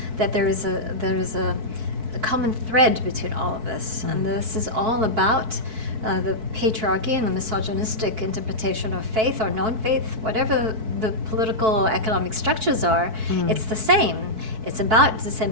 that there is a common thread between all of this, and this is all about the patriarchy and the misogynistic interpretation of faith or non-faith, whatever the political or economic structures are. It's the same. It's about this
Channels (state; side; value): late; left; 4.6 ms